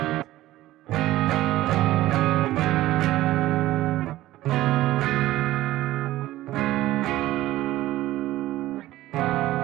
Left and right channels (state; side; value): quieter; left; 15.7 dB